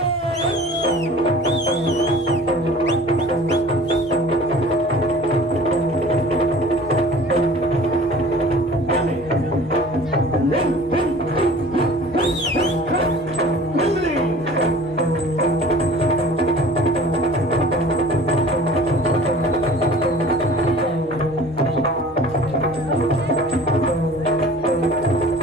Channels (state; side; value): normal; both; correlation 0.45